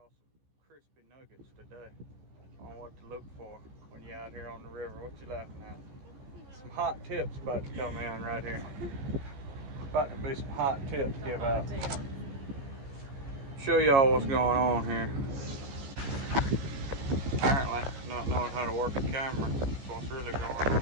some crispy nuggets today on what to look for when you're out here on the river. What you laughing at? Some hot tips about to come in right here. About to be some hot tips give out. Show y'all what's going on here. Apparently, not knowing how to work a camera. That's what's really going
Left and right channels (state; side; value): late; left; 15 ms